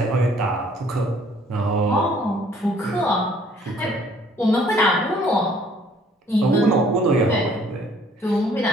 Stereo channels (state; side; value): normal; both; correlation 0.59